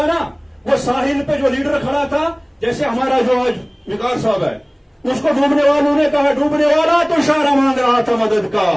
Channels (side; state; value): both; identical; correlation 1.00